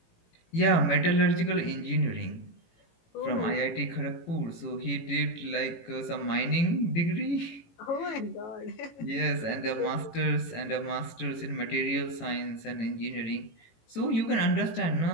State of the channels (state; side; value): late; right; 18 ms